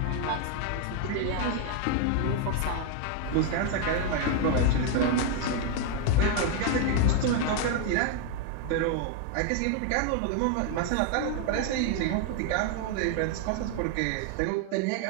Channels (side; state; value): both; different; correlation 0.01